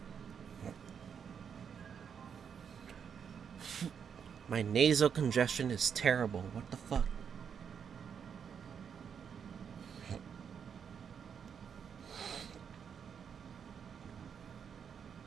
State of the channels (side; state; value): left; quieter; 7.3 dB